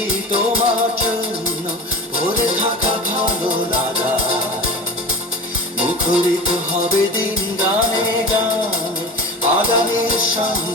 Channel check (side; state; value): both; normal; correlation 0.32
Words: তোমার জন্য ভরে থাকা ভালো লাগা। মুখরিত হবে দিন গানে গানে, আগামীর